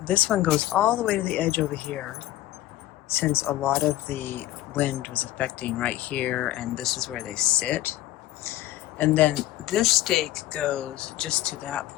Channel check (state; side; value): quieter; right; 15.3 dB